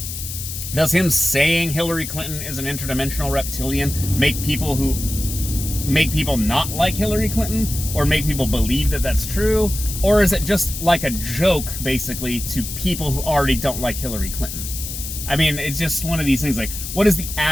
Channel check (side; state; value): left; noise; hiss, 7 dB below the sound